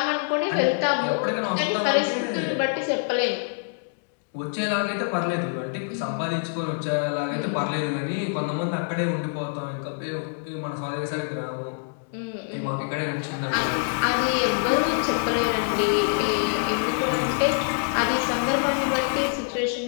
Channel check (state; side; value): silent; right; digital silence